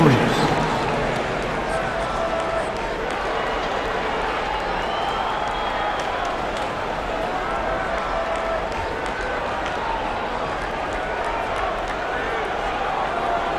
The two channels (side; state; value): both; identical; correlation 1.00